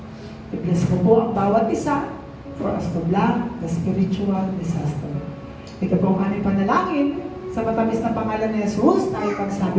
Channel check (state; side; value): identical; both; correlation 1.00